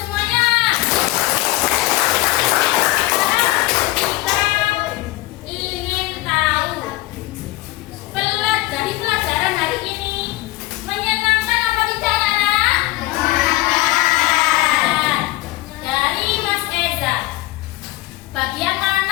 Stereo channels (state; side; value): quieter; right; 18.6 dB